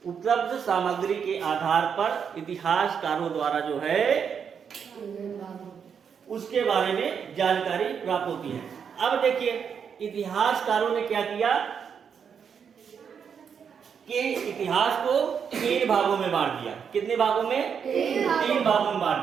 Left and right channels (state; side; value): quieter; left; 7.1 dB